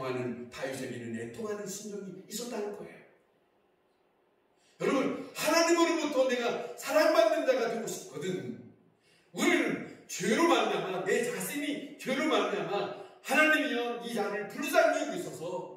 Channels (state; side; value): identical; both; correlation 1.00